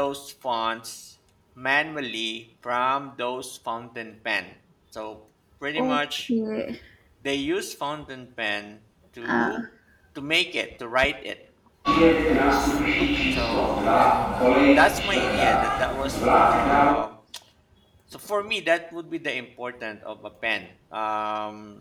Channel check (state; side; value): identical; both; correlation 1.00